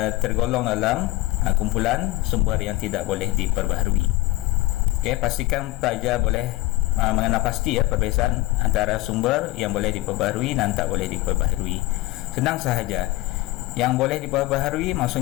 tergolong dalam kumpulan sumber yang tidak boleh diperbaharui. Pastikan pelajar boleh mengenal pasti perbezaan antara sumber yang boleh diperbaharui dan tak boleh diperbaharui. Senang sahaja. Yang boleh diperbaharui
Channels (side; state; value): right; quieter; 19.4 dB